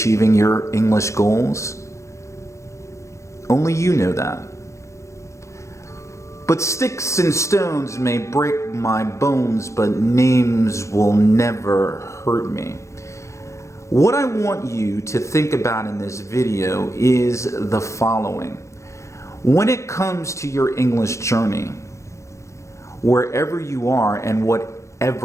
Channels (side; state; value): right; late; 0.14 ms